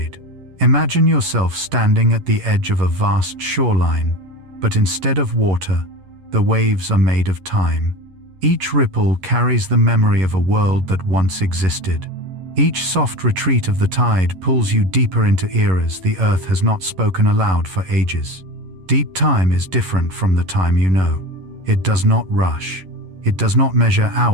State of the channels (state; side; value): late; left; 11 ms